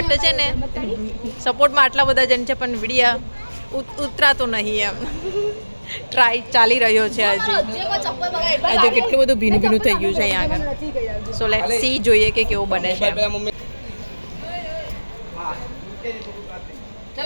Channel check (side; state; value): both; inverted; correlation -1.00